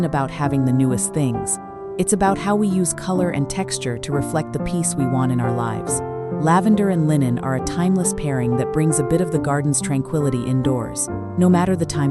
about having the newest things. It's about how we use color and texture to reflect the peace we want in our lives. Lavender and linen are a timeless pairing that brings a bit of the garden's tranquility indoors, no matter the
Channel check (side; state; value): both; identical; correlation 1.00